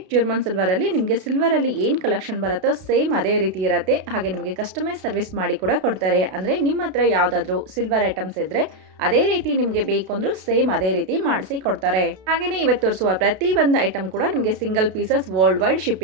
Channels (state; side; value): late; left; 32 ms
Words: ಜರ್ಮನ್ ಸಿಲ್ವರಲ್ಲಿ ನಿಮಗೆ ಸಿಲ್ವರಲ್ಲಿ ಏನು ಕಲೆಕ್ಷನ್ ಬರುತ್ತೋ ಸೇಮ್ ಅದೇ ರೀತಿ ಇರುತ್ತೆ. ಹಾಗೆ ನಿಮಗೆ ಕಸ್ಟಮೈಸ್ ಸರ್ವಿಸ್ ಮಾಡಿ ಕೂಡ ಕೊಡ್ತಾರೆ. ಅಂದರೆ ನಿಮ್ಮ ಹತ್ರ ಯಾವುದಾದ್ರೂ ಸಿಲ್ವರ್ ಐಟಮ್ಸ್ ಇದ್ದರೆ ಅದೇ ರೀತಿ ನಿಮಗೆ ಬೇಕು ಅಂದರೂ ಸೇಮ್ ಅದೇ ರೀತಿ ಮಾಡಿಸಿ ಕೊಡ್ತಾರೆ. ಹಾಗೆಯೇ ಇವತ್ತು ತೋರಿಸುವ ಪ್ರತಿ ಒಂದು ಐಟಮ್ ಕೂಡ ನಿಮಗೆ single pieces world wide